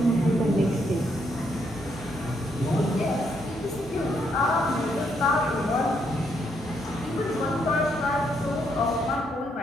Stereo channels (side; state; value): both; normal; correlation 0.75